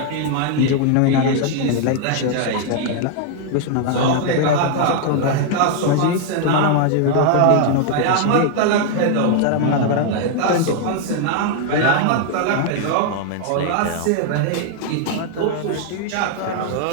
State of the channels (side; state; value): both; different; correlation 0.00